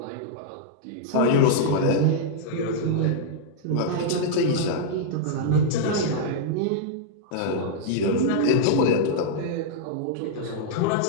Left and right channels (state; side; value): different; both; correlation -0.01